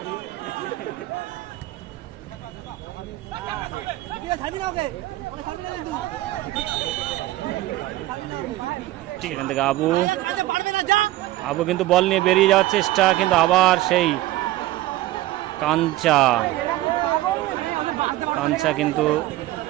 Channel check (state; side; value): quieter; left; 16.5 dB